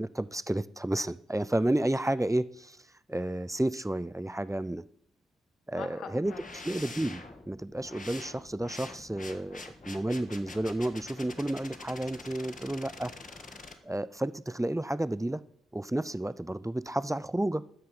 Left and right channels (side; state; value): both; normal; correlation 0.96